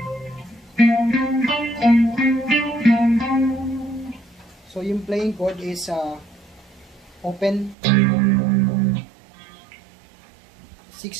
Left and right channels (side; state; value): left; drops out; at 7.8 s